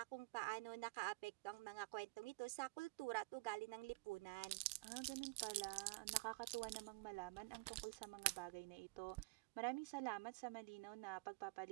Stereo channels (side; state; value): left; quieter; 23.7 dB